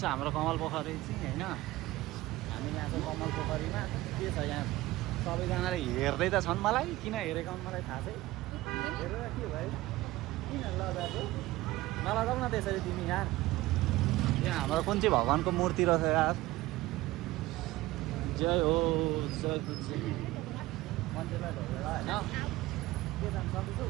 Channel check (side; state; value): left; quieter; 18.1 dB